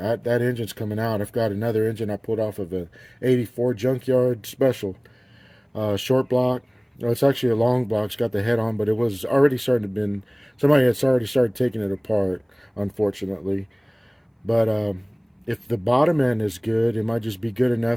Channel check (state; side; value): identical; both; correlation 1.00